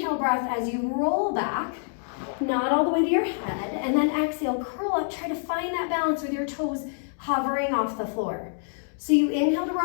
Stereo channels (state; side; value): silent; right; digital silence